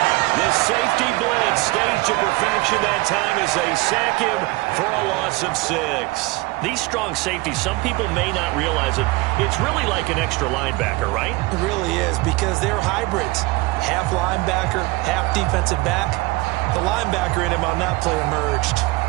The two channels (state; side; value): quieter; left; 22.0 dB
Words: The safety blitz staged to perfection that time as they sack him for a loss of 6. These strong safeties, some people may not realize it. It's really like an extra linebacker, right? It really is, because they're hybrids. Half linebacker, half defensive back. The linebacker in him on that play emerged.